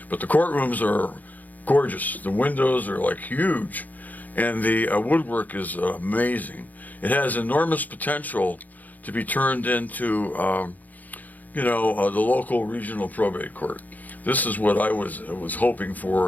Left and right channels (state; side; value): late; right; 0.081 ms